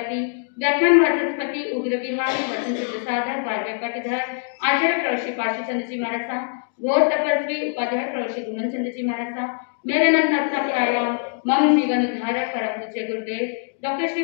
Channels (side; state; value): right; silent; 63 dB below the other